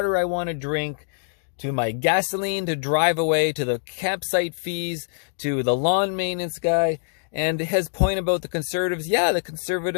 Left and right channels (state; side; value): silent; right; digital silence